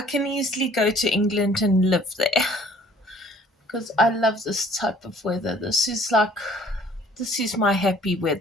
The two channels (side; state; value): both; normal; correlation 0.56